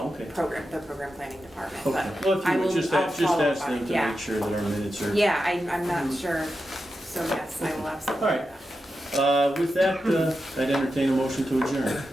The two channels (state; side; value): normal; both; correlation 0.89